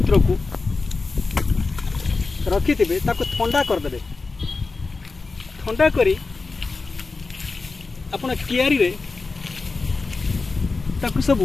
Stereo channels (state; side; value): quieter; right; 4.0 dB